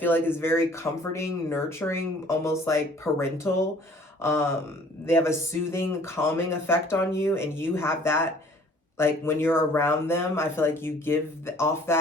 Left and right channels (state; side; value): normal; both; correlation 0.54